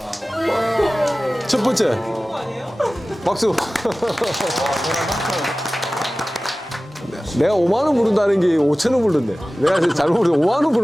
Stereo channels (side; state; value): both; normal; correlation 0.97